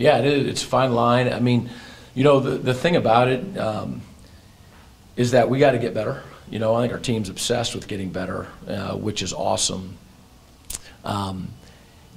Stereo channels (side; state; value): both; identical; correlation 1.00